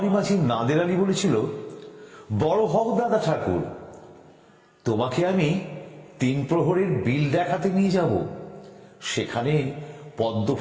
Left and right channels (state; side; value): identical; both; correlation 1.00